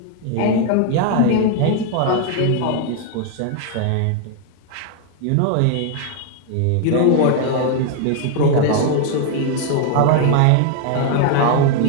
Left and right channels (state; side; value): different; both; correlation 0.00